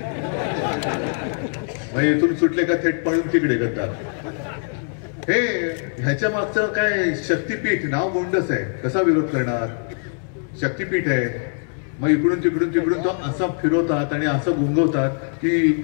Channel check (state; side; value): silent; right; 56 dB below the other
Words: मग इथून सुटले का थेट पळून तिकडे गद्दार. हे ह्याच्या मागचं काय? शक्तीपीठ नाव गोंडस आहे, कसा विरोध करणार? शक्तीपीठ आहे. मग इकडून तिकडून तिकडून तो असा फिरवतात आणि असं गुंगवतात की